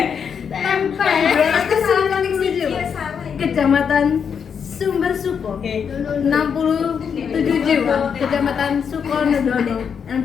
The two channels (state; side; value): quieter; right; 7.0 dB